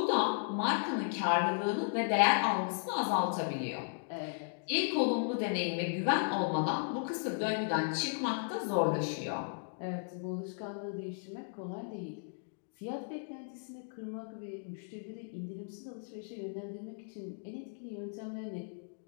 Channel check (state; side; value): silent; right; digital silence